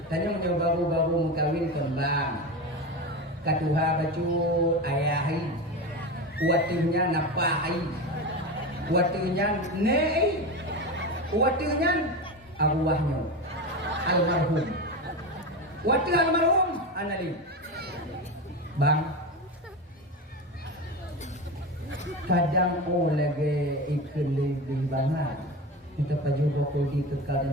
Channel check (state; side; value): normal; both; correlation 0.22